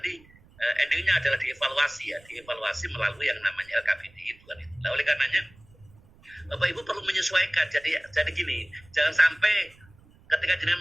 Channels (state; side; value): noise; right; rumble, 27 dB below the sound